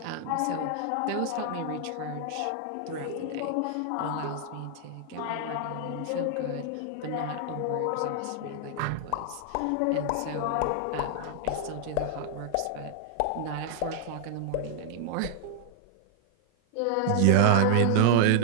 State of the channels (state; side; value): different; both; correlation 0.00